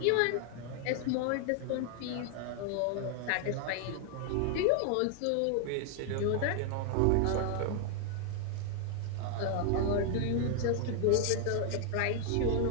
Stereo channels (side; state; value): both; different; correlation 0.00